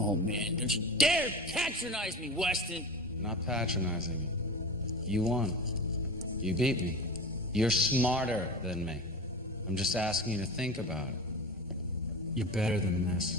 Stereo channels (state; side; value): normal; both; correlation 0.30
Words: man, don't you dare patronize me, Weston. I'm not patronizing you. You won. You beat me. You're smarter than me. I'm just asking you to think about it. You're better than